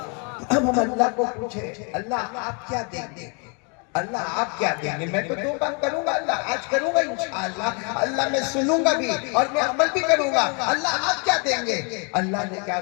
हम अल्लाह को पूछे, अल्लाह आप क्या देंगे? अल्लाह आप क्या देंगे? मैं तो 2 काम करूंगा, अल्लाह आज करूंगा इंशाअल्लाह। अल्लाह मैं सुनूंगा भी और मैं अमल भी करूंगा। अल्लाह आप क्या देंगे? अल्लाह ने क्या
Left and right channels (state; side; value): quieter; right; 35.1 dB